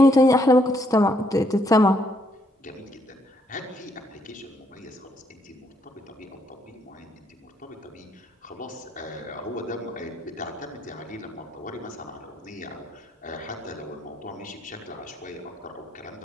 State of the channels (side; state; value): both; normal; correlation 0.73